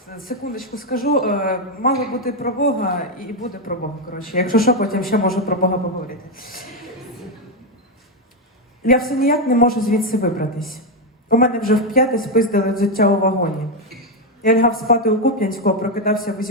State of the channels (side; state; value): both; normal; correlation 0.05